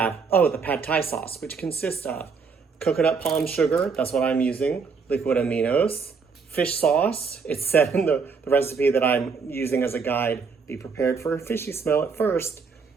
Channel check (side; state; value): left; quieter; 5.3 dB